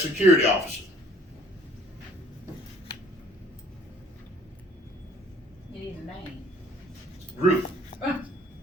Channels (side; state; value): both; normal; correlation 0.56